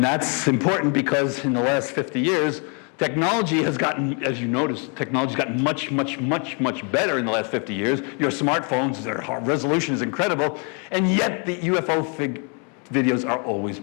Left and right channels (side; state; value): right; quieter; 37.2 dB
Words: that's important because in the last 50 years, technology has gotten, as you notice, technology's gotten much, much, much, much better in the last 50 years. Your smartphones, their resolution is incredible, and yet the UFO videos are always